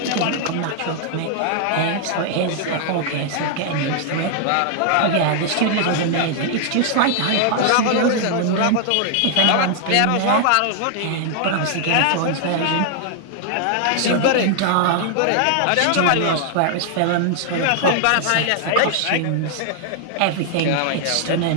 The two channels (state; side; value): different; both; correlation 0.00